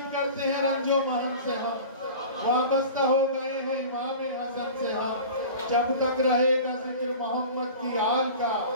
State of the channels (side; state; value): both; inverted; correlation -0.38